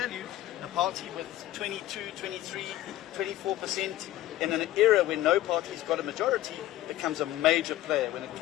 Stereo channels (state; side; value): quieter; right; 14.6 dB